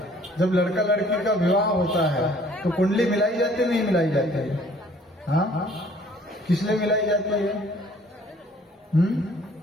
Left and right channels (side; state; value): both; normal; correlation 0.56